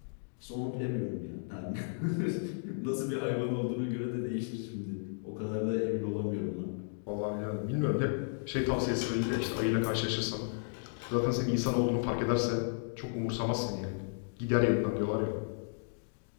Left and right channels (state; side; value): silent; right; digital silence